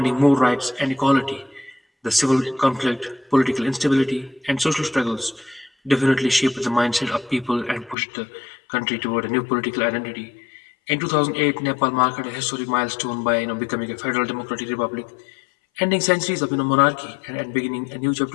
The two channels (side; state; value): right; drops out; at 8.0 s